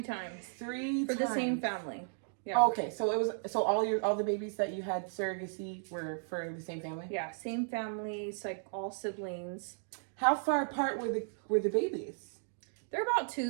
times. 3 for times. the same family. Yeah. Oh, okay, so it was all the babies that you had surrogacy were for the same family. Yeah, same families, like all siblings. How far apart were the babies? They're about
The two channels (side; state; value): left; silent; digital silence